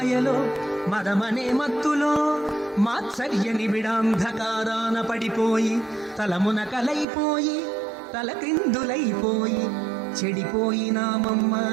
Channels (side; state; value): left; drops out; at 7.1 s